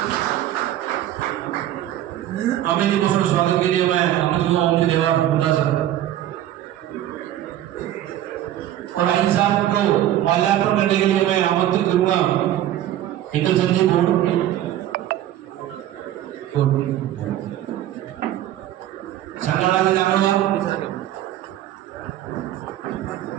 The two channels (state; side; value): quieter; left; 12.6 dB